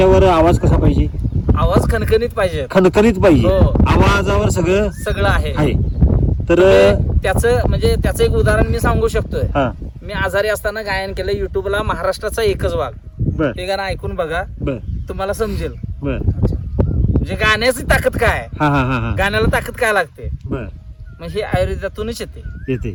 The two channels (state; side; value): identical; both; correlation 1.00